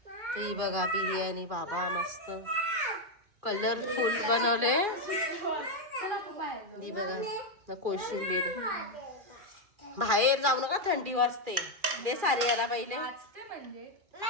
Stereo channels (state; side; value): late; left; 2.4 ms